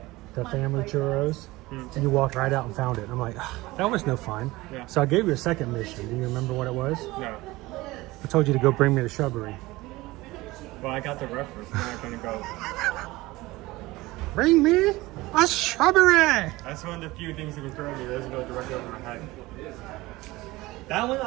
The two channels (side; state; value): left; quieter; 19.9 dB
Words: the family churros. And you walked right out and found it. I'm like, that was no fun. Yeah. So I gave you a second mission. Do you remember what it was? No. I told you to go bring me the shrubbery. Well, I got the reference. I'm not going to go. Bring me a shrubbery! That's one of the few things that can throw me. It doesn't go directly over my head. That one